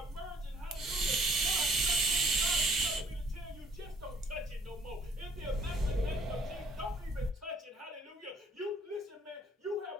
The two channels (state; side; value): normal; both; correlation 0.60